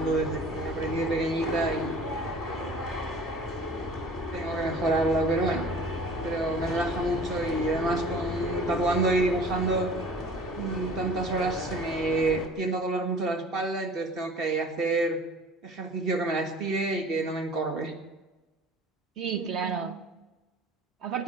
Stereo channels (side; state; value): both; normal; correlation 0.46